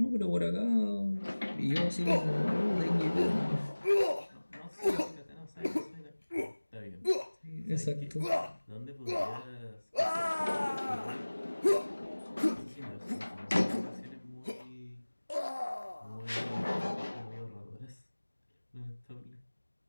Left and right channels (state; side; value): inverted; both; correlation -1.00